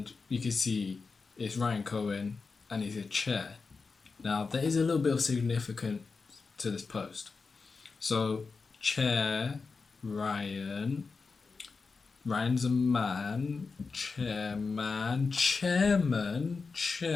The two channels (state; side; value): quieter; right; 4.6 dB